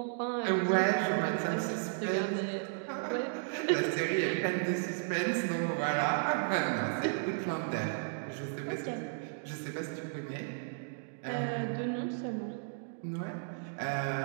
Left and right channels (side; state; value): left; silent; digital silence